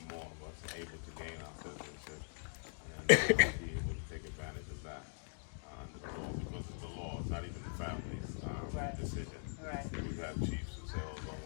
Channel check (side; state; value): right; silent; digital silence